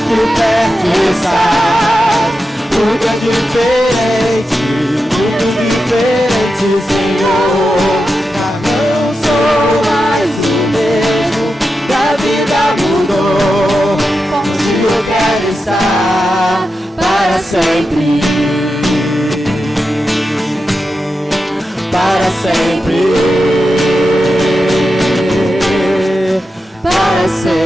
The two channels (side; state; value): both; normal; correlation 0.89